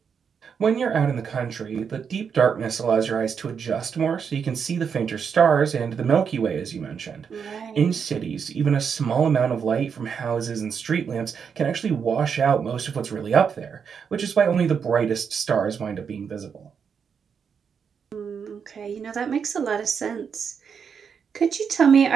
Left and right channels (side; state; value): left; quieter; 6.7 dB